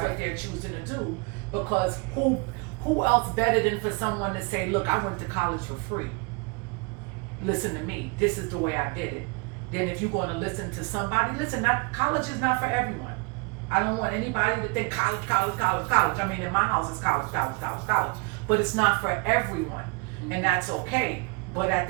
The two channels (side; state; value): left; quieter; 30.6 dB